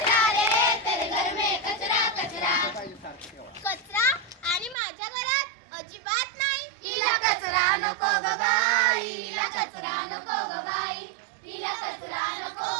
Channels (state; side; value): drops out; left; at 4.8 s